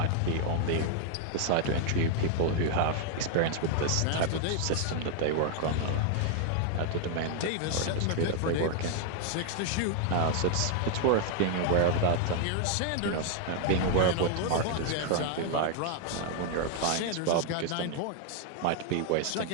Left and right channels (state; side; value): different; both; correlation 0.00